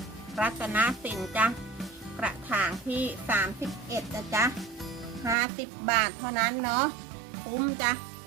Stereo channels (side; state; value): left; drops out; at 5.4 s